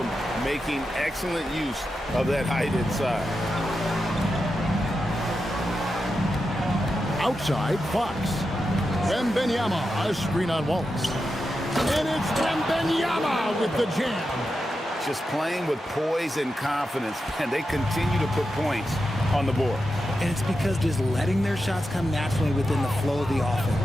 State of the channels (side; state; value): both; normal; correlation 0.89